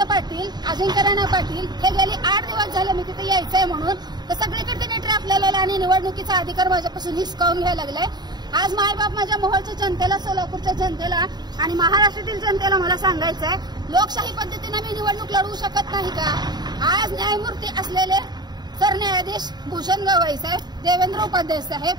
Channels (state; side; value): late; left; 0.20 ms